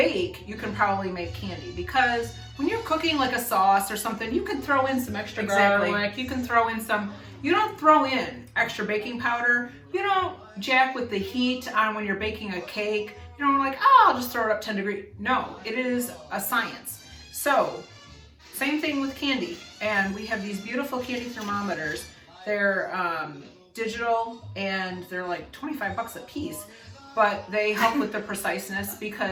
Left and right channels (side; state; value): both; identical; correlation 1.00